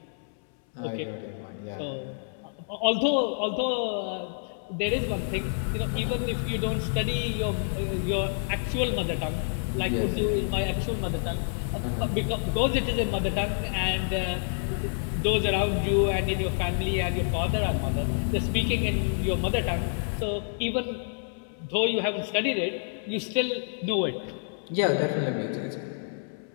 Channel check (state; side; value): silent; right; 59 dB below the other